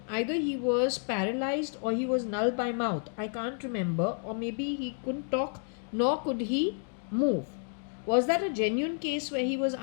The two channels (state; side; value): silent; right; 57 dB below the other